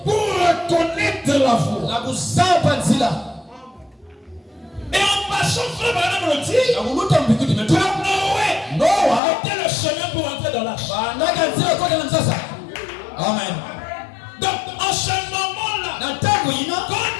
pour reconnaître la voie. Et en passant, frère Branham le dit, Noé était le chemin pour entrer dans l'arche. Amen. Donc en ce moment-là, quand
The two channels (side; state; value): right; drops out; at 9.2 s